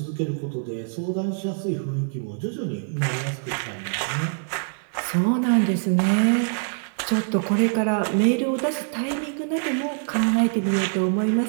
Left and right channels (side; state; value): left; silent; 62 dB below the other